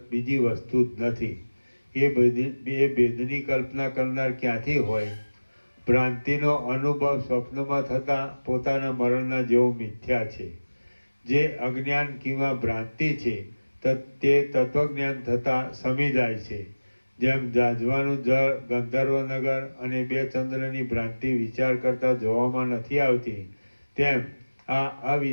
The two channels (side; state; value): both; inverted; correlation -1.00